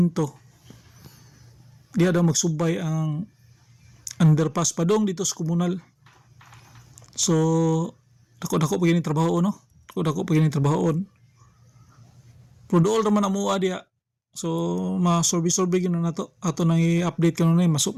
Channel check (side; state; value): both; identical; correlation 1.00